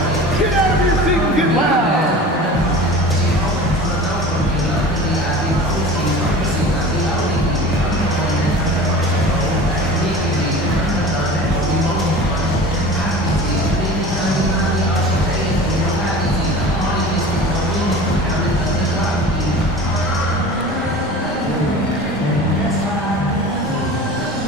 get out of your seat and get loud.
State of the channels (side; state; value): both; normal; correlation 0.37